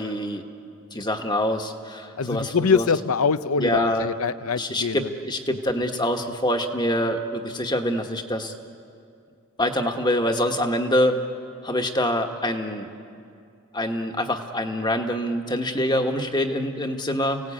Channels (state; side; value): normal; both; correlation 0.36